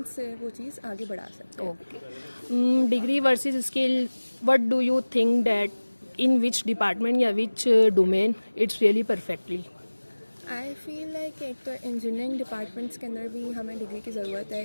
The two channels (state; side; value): inverted; both; correlation -1.00